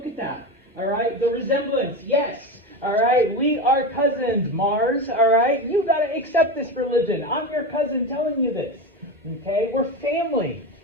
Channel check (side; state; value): both; normal; correlation 0.21